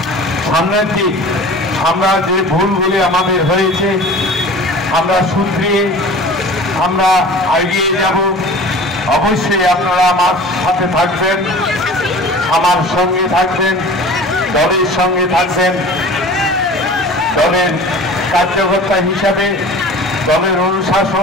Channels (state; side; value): normal; both; correlation 0.40